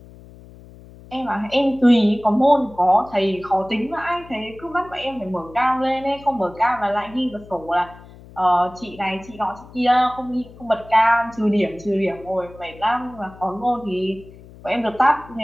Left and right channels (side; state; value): left; noise; hum, 20 dB below the sound